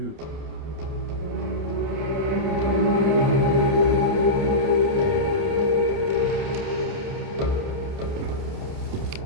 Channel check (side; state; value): left; late; 29 ms